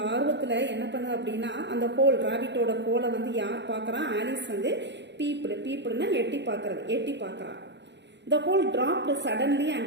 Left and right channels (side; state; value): left; late; 0.51 ms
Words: ஆர்வத்தில் என்ன பண்ணுது அப்படின்னா, அந்த ஹோல் ராபிட்டோட ஹோலை வந்து யார் பார்க்குறா, ஆலிஸ் வந்து பீப்புடுன்னா எட்டி பார்க்குறா. The hole dropped suddenly